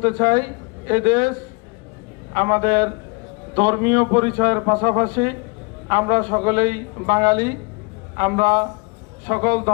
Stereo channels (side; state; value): right; quieter; 29.6 dB